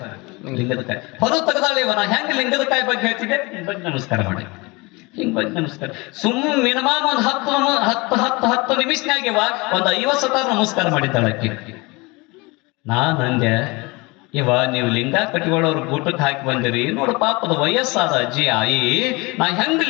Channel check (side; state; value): right; quieter; 25.4 dB